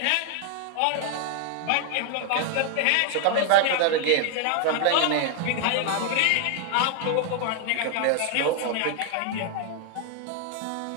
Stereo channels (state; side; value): different; both; correlation 0.00